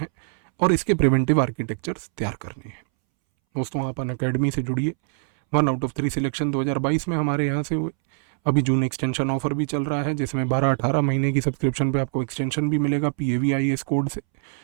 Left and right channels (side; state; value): left; silent; 63 dB below the other